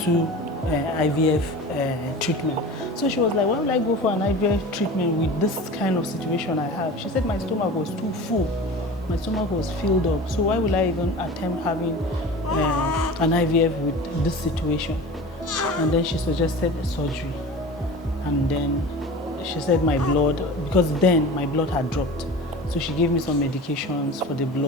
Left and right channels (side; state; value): both; normal; correlation 0.35